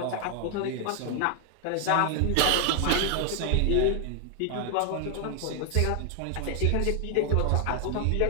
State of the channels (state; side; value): different; both; correlation 0.00